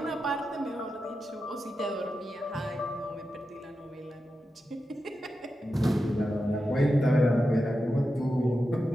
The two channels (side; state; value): both; normal; correlation 0.90